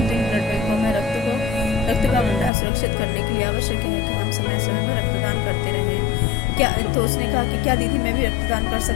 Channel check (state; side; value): drops out; right; at 2.5 s